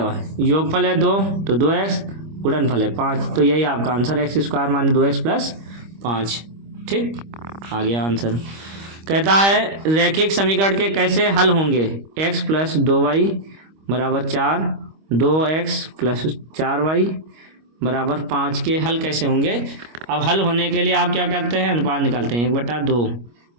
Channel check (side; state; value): left; late; 25 ms